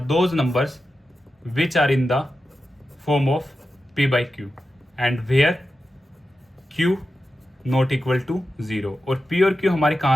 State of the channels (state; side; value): normal; both; correlation 0.91